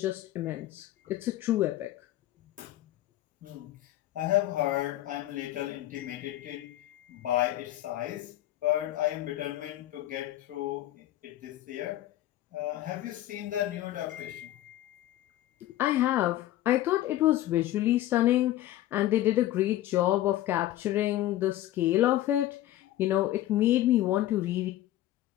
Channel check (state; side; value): quieter; right; 14.3 dB